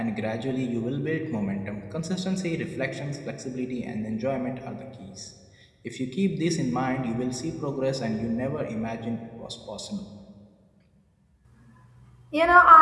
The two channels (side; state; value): both; identical; correlation 1.00